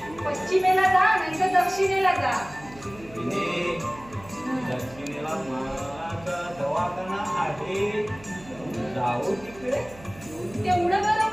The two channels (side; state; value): right; noise; hum, 20 dB below the sound